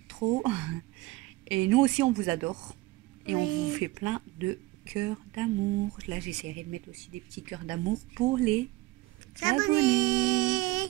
trop. Et nous aussi, on vous adore. Et on Oui. vous fait plein de cœurs d'amour. Là, j'essaierai de mettre aussi des petits cœurs d'amour pour les abonnés.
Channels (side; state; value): left; quieter; 19.6 dB